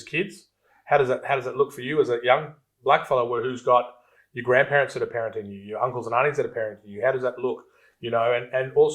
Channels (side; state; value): both; identical; correlation 1.00